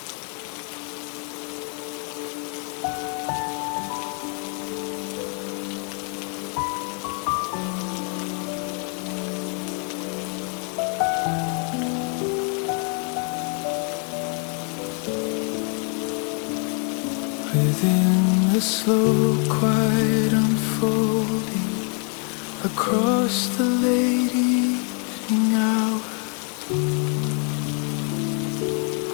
Within the slow, quiet unfolding across the late evening hour,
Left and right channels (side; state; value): right; quieter; 39.4 dB